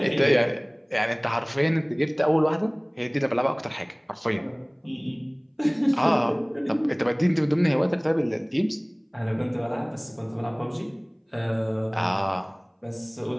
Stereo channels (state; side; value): identical; both; correlation 1.00